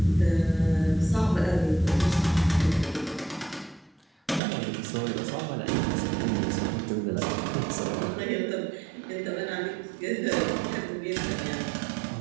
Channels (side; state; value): left; drops out; at 4.4 s